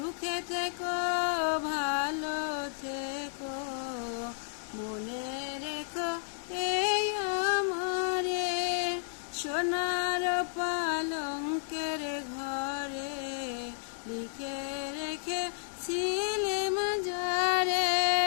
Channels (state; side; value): silent; right; digital silence